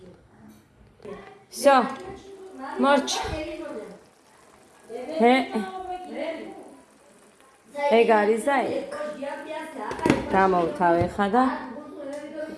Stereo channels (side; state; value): both; identical; correlation 1.00